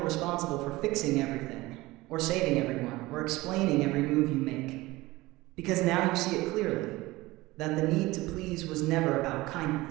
responsible for fixing everything, or saving everyone, or explaining every move you make. Because now you see it clearly, that the need to please was never about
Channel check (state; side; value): quieter; left; 19.8 dB